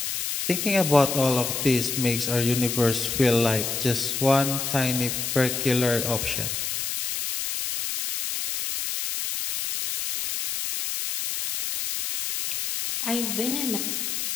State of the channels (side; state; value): left; noise; hiss, 3 dB below the sound